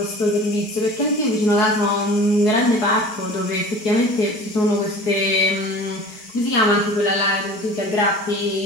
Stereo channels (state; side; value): late; right; 4.8 ms